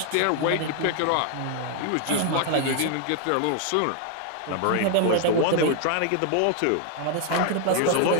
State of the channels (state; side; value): different; both; correlation 0.00